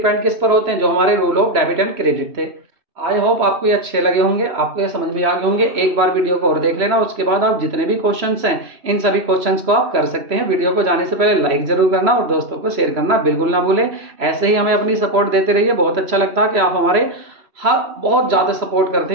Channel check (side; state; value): left; late; 3.0 ms